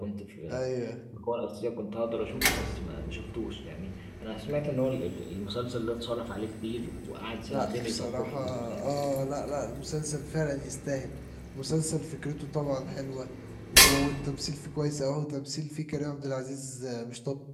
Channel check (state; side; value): identical; both; correlation 1.00